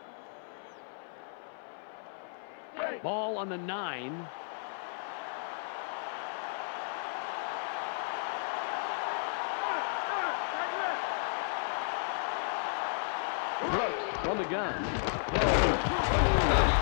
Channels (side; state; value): right; silent; 55 dB below the other